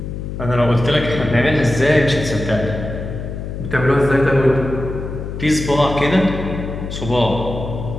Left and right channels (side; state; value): left; noise; hum, 7 dB below the sound